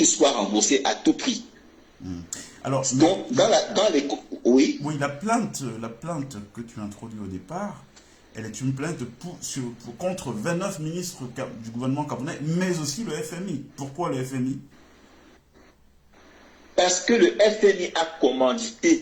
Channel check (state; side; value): identical; both; correlation 1.00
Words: soient remboursés à tout prix. Alors, donc, oui, la plainte que tu introduis au départ, elle est une plainte contre 29 ministres du gouvernement camerounais, mais aussi le FMI. Pourquoi le FMI? Parce que le FMI a